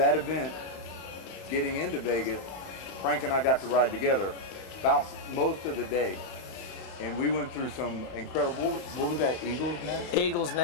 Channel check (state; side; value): late; right; 32 ms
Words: event, getting into Vegas, Frank and I got to ride together about most of the day. And we went through some incredible, what was that, Eagle's Nest? Eagle's